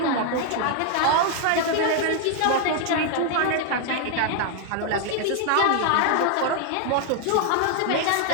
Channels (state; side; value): different; both; correlation 0.00